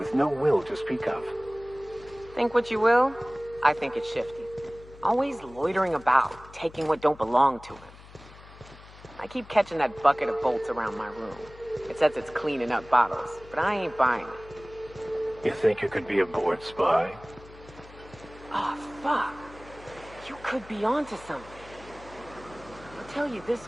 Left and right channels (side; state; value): left; noise; hum, 20 dB below the sound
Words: no will to speak of. Think what you will, I think it's shifty. Always loitering about, taking what don't belong to him. I keep catching that bucket of bolts around my room. It says it's cleaning up bottles, but I ain't buying it. You think you could be a bored spy? Oh, fuck. You could be onto something. I'll tell you